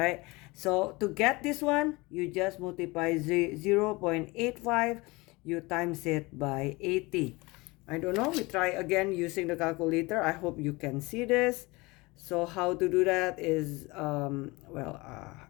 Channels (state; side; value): quieter; right; 23.8 dB